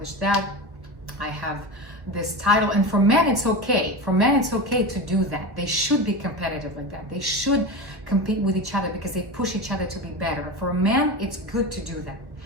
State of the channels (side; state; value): left; late; 1.1 ms